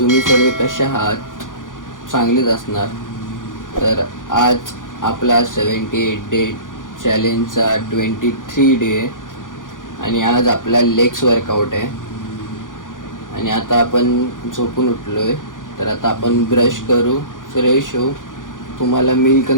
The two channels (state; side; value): late; right; 0.88 ms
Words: सर्व कसे आहात? चांगलेच असणार. तर आज आपला 78 डे चॅलेंजचा 23 डे आणि आज आपला लेग्स वर्कआउट आहे. आणि आता आपण झोपून उठलो आहे. तर आता आपण ब्रश करू, फ्रेश होऊ, तुम्हाला मील